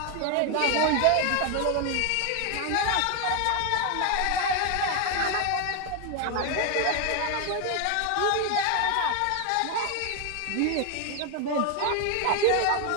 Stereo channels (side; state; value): both; different; correlation 0.01